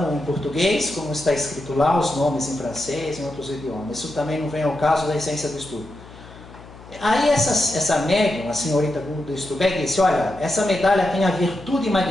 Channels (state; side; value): noise; left; hum, 19 dB below the sound